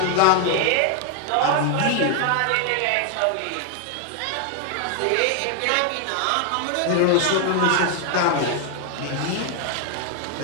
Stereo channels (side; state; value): both; different; correlation 0.00